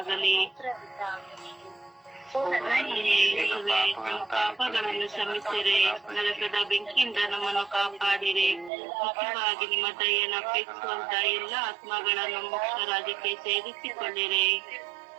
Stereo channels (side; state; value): left; drops out; at 8.7 s